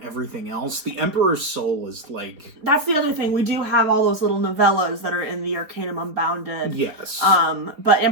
everything else. The Emperor's Soul is like... That's the other thing. We do have all those little novellas that are in the Arcanum Unbounded. Yes. But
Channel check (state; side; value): late; left; 4.2 ms